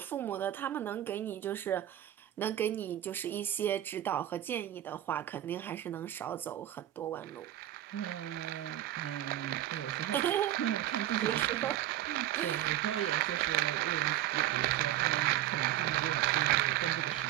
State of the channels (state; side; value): quieter; left; 13.0 dB